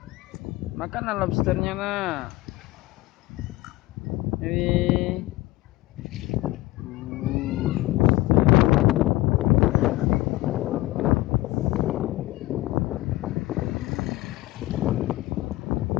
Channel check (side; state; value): right; quieter; 18.7 dB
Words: Makan lobsternya nak. Ini.